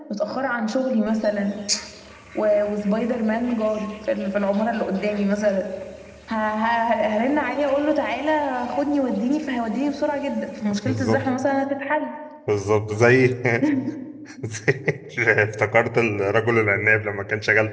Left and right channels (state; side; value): identical; both; correlation 1.00